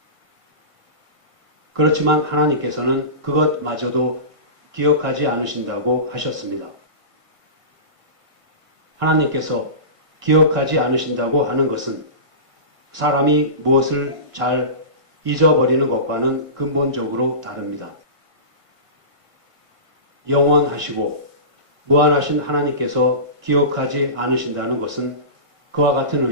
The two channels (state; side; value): late; left; 1.5 ms